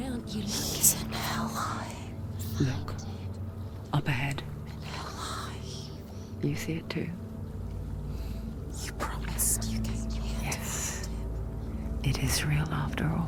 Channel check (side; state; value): both; identical; correlation 1.00